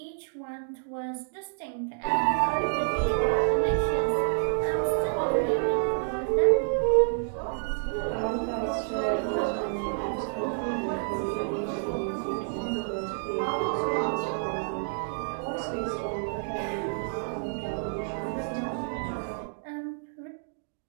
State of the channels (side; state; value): left; silent; digital silence